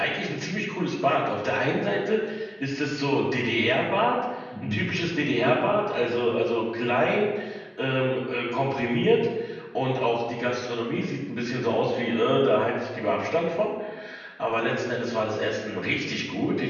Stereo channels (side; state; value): both; identical; correlation 1.00